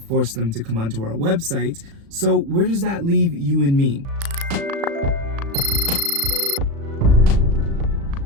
them to come onto our website. So where does that leave you and me?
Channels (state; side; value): late; left; 36 ms